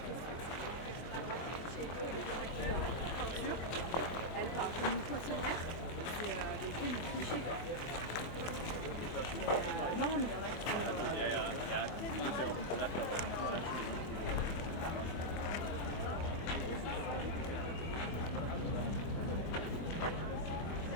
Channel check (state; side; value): late; right; 24 ms